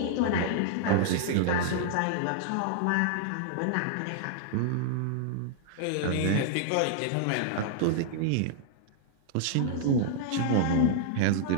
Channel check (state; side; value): different; both; correlation -0.01